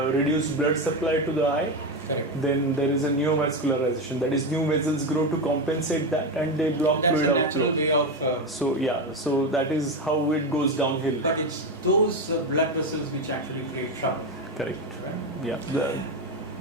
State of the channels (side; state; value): both; normal; correlation 0.14